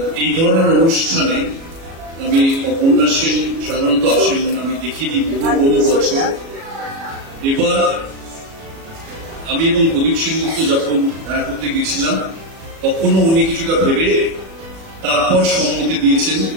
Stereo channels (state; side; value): late; left; 36 ms